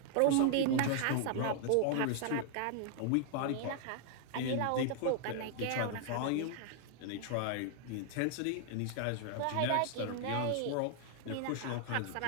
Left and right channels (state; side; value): different; both; correlation 0.00